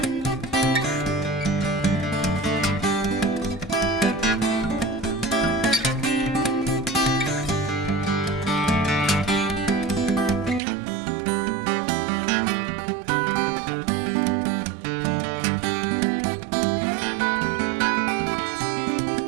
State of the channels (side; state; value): left; drops out; at 10.6 s